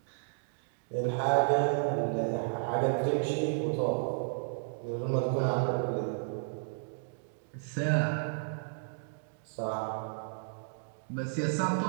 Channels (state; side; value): silent; left; digital silence